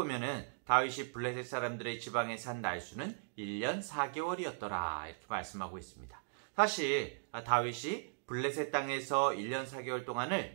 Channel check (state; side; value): silent; left; digital silence